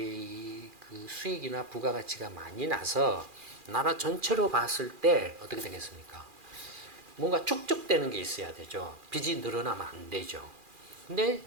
수익이나 부가가치가 많이 나서 나라 전체로 봤을 때 어떻게 되겠습니까? 뭔가 축적되는 게 있어야 되죠. 빚이 늘어나면 안 되죠. 근데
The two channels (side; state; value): left; late; 2.4 ms